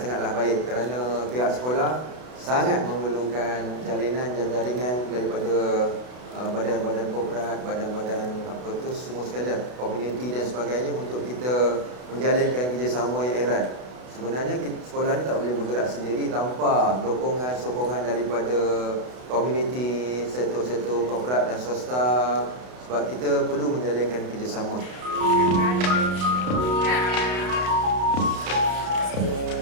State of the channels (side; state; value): left; late; 32 ms